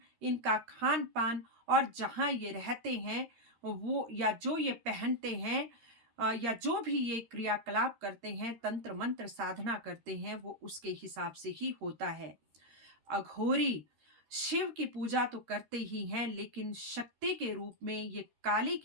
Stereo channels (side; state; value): left; late; 13 ms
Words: इनका खान पान और जहां ये रहते हैं वो, या जो ये पहनते हैं, या जो भी ये क्रियाकलाप करते हैं, तंत्र मंत्र साधना करते हैं, वो उसके हिसाब से ही होता है। अघोरी शिव की पूजा तो करते ही हैं, लेकिन शक्ति के रूप में ये काली